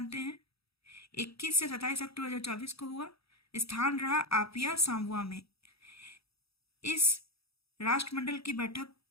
हैं, 21 से 27 अक्टूबर 2024 को हुआ। स्थान रहा आपिया, सांबुआ में। इस राष्ट्रमंडल की बैठक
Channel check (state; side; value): late; right; 0.77 ms